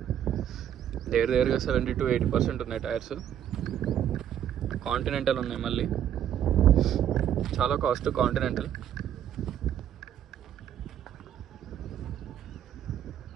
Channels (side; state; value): left; quieter; 10.1 dB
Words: దగ్గరగా 70 to 80% ఉన్నాయి టైర్స్. కాంటినెంటల్ ఉన్నాయి, మళ్ళీ చాలా కాస్ట్ కాంటినెంటల్.